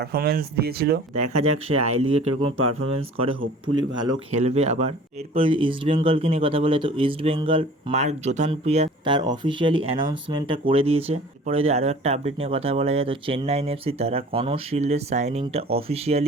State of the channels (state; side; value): normal; both; correlation 0.46